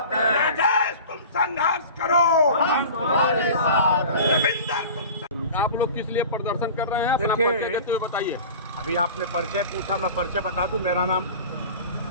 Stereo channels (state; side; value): inverted; both; correlation -0.38